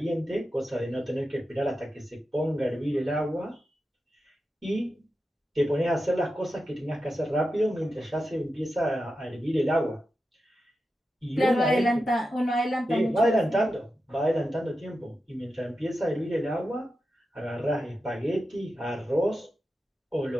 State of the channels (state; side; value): normal; both; correlation 0.90